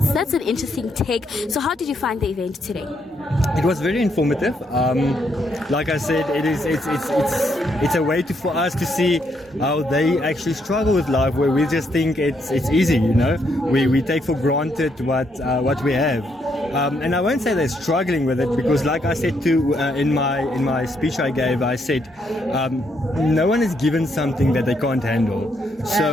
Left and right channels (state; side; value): normal; both; correlation 0.75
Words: that's an interesting take. So how did you find the event today? It was very informative. Like I said, it's a way for us to see how they actually struggle with life, where we just think it's easy, you know. We take for granted what we have, and I won't say they're struggling with it, because like I said too in my speech I gave, I said no one is given something that they can't handle.